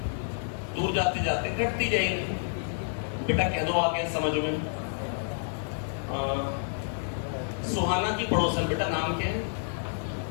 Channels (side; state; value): right; silent; digital silence